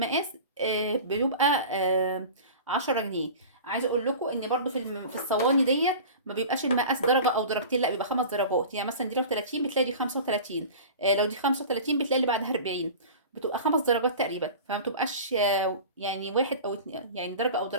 بيبقى 10 جنيه. عايزه اقول لكم ان برضو في الصواني ديت ما بيبقاش المقاس درجه او درجتين، لا بيبقى 5 درجات. يعني مثلا دي لو 30 بتلاقي دي 35، لو دي 35 بتلاقي اللي بعدها 40. بتبقى 5 درجات تقريبا، فما بتبقاش يعني واحد او اتنين يعني درجه او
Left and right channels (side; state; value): both; inverted; correlation -0.36